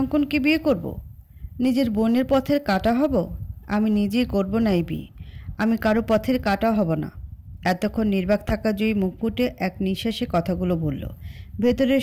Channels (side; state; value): both; identical; correlation 1.00